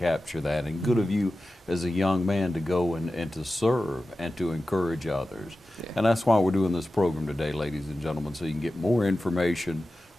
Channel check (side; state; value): both; normal; correlation 0.94